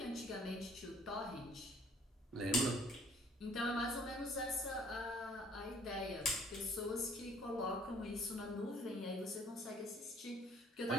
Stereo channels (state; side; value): normal; both; correlation 0.56